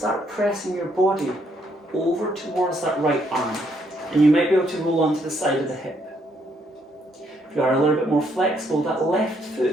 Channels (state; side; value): normal; both; correlation 0.72